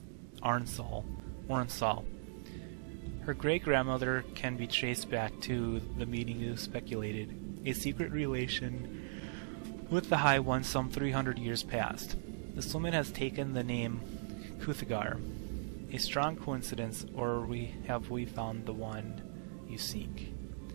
Arnsal. Her great-grandmother can be traced back to the meeting you speculated, a secret relation with the High One some 300 years past. This woman has taken the name Kuthagar. A strong coincidence, or have we found the one you seek?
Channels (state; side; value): silent; left; digital silence